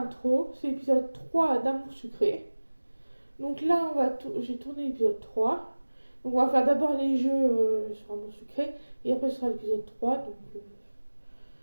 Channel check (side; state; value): both; inverted; correlation -1.00